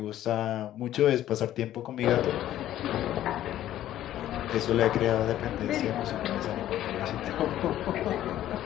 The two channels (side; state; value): right; quieter; 12.7 dB